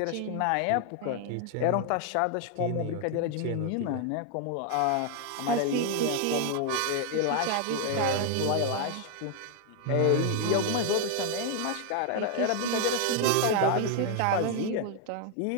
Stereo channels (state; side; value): different; both; correlation 0.00